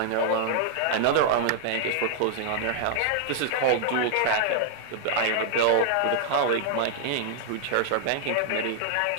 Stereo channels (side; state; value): both; different; correlation -0.01